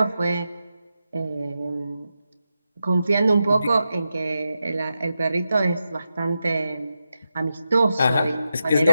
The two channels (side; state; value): both; inverted; correlation -0.88